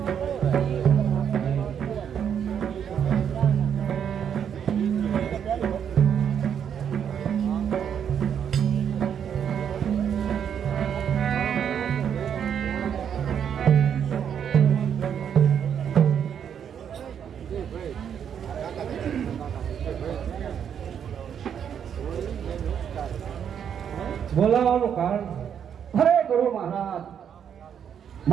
બોલાવાનું કારણ અરે ગુરુ મહારાજ,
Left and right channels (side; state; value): left; quieter; 8.3 dB